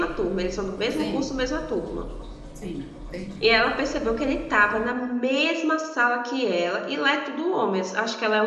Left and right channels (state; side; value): identical; both; correlation 1.00